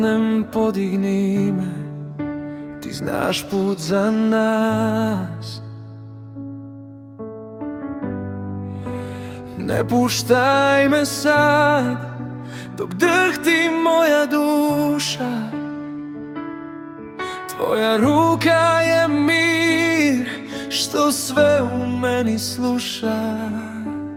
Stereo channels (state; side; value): identical; both; correlation 1.00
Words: podigni me, ti znaš put za nas. Ne puštaj me sad, dok drhti moja duša. Tvoja ruka je mir, što sve u meni sluša.